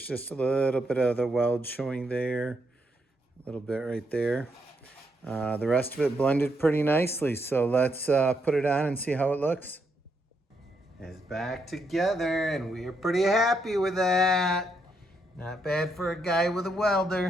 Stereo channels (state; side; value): normal; both; correlation 0.78